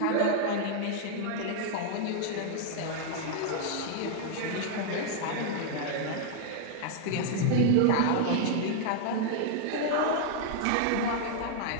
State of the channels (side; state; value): both; different; correlation -0.01